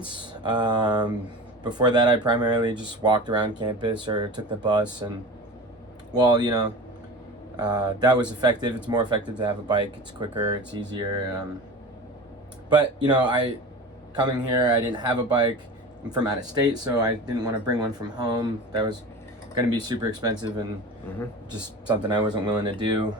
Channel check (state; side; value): normal; both; correlation 0.34